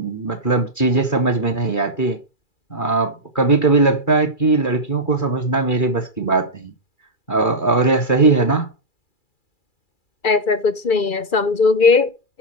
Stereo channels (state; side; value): late; right; 2.3 ms